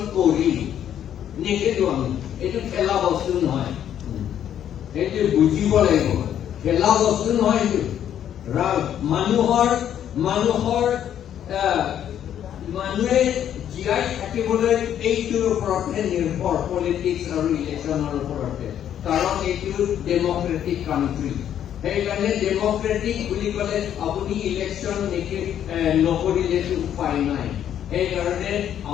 কৰিম, নেখেলো আমি। এইটো খেলা বস্তু নহয়, সেইটো বুজিব লাগিব। খেলা বস্তু নহয় এইটো। মানুহে জীয়াই থাকিবলৈ এইটোৰ ওপৰতহে নিৰ্ভৰ, পলিটিক্স আৰু ইলেকশ্যনৰ ওপৰতে। কাৰণ এইটো ডেমক্ৰেটিক কাণ্ট্ৰি। সেইকাৰণে ডেমক্ৰেটিক বুলি ক'লে আপুনি ইলেকশ্যন নকৰিলেতো উপায় নাই। সেইকাৰণে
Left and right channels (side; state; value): right; quieter; 10.1 dB